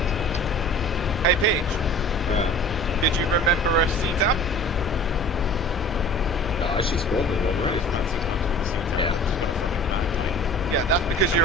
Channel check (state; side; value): normal; both; correlation 0.44